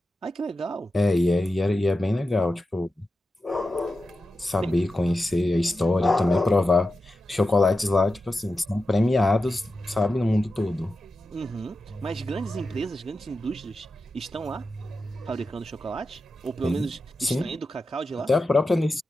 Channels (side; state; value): both; normal; correlation 0.91